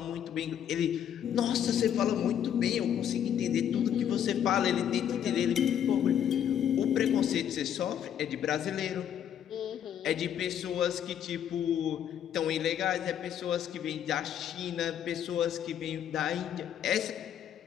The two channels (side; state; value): right; quieter; 9.6 dB